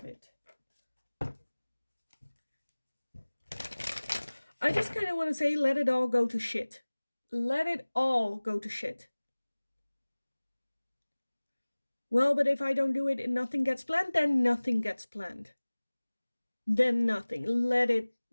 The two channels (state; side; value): inverted; both; correlation -1.00